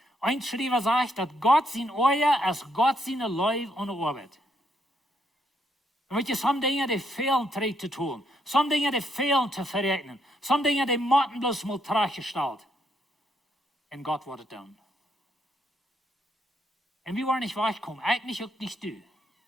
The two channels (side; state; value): both; normal; correlation 0.75